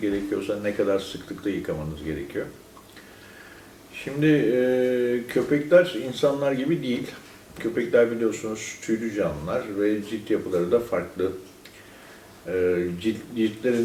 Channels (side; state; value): both; identical; correlation 1.00